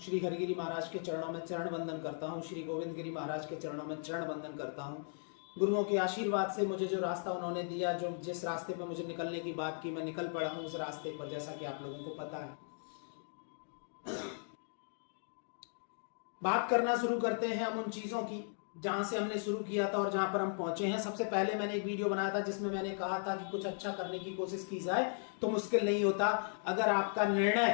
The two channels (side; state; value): right; silent; digital silence